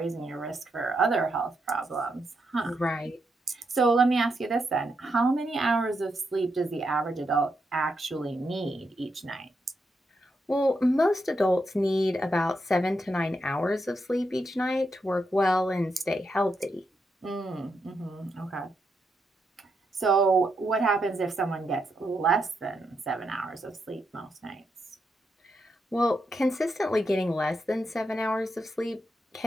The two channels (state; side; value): normal; both; correlation 0.82